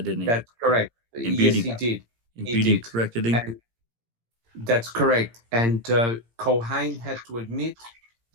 didn't he? That's correct. And Yes, he did. And He Beauty did. corrected him. And that's correct. And Culhane had to admit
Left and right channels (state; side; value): late; left; 17 ms